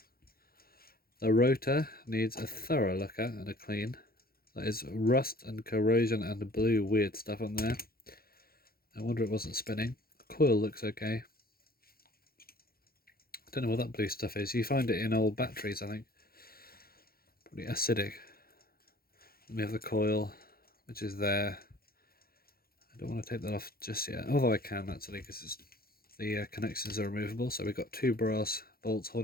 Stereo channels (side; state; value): right; late; 0.44 ms